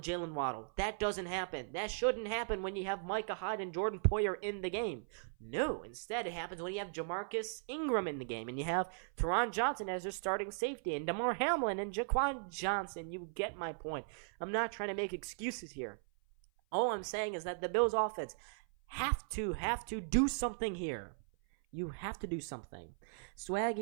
Waddle. That doesn't happen. That shouldn't happen when you have Micah Hyde and Jordan Poyer in the game. No, instead it happens when you have Jamarcus Ingram in the game, and you have Teron Johnson as your starting safety, and Damar Hamlin and Jaquan Johnson. You get my point. I'm not trying to make excuses here. All I'm saying is that the Bills offense have to do something here. You have to do something.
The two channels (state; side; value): silent; left; 53 dB below the other